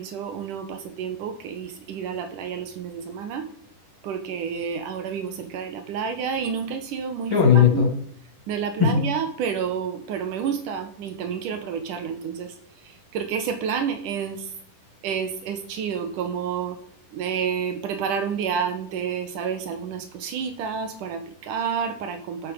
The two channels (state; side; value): late; left; 10 ms